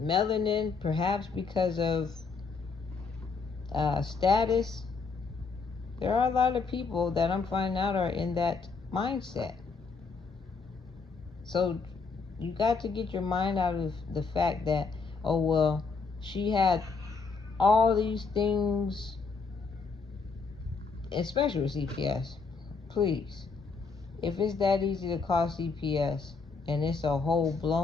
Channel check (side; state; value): right; quieter; 4.7 dB